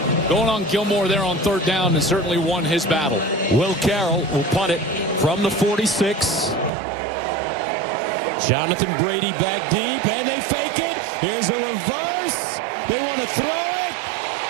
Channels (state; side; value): drops out; left; at 6.7 s